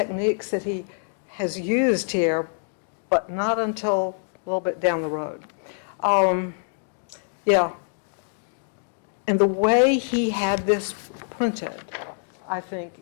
that he has used here, but not until a little bit down the road. Yeah. And the way he had this printed, I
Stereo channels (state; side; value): silent; right; digital silence